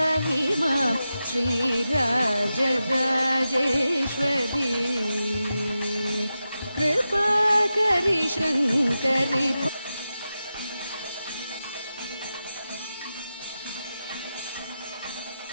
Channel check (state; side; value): inverted; both; correlation -0.91